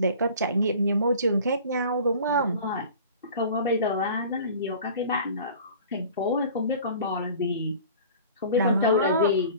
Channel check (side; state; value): both; inverted; correlation -0.43